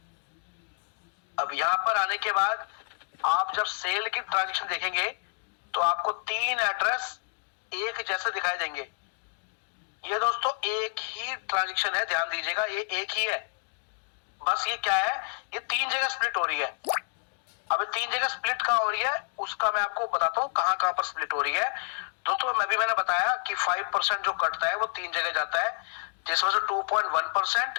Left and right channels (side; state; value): right; silent; digital silence